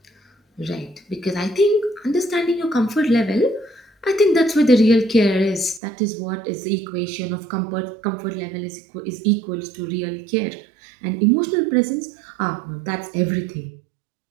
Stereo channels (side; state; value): left; drops out; at 5.8 s